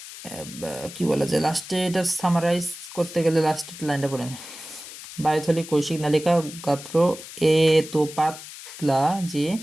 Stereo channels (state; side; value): noise; left; hiss, 14 dB below the sound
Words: কি বলা যায় লাস্টে, এটা সামারাইজ করতে গেলে লাস্টের লাইনটা পড়েন। বায়ুথলি কৈশিক নালিকা গাত্র এত পাতলা যে